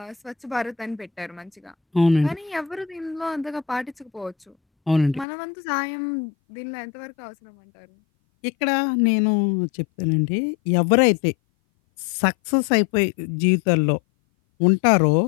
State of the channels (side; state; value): right; drops out; at 5.2 s